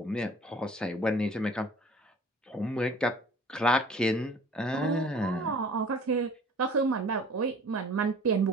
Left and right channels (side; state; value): both; normal; correlation 0.48